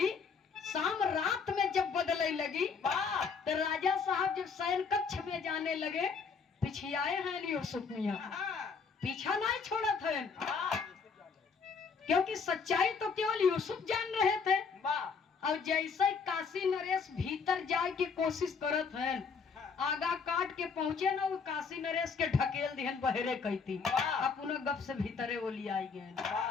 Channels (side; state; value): right; quieter; 5.5 dB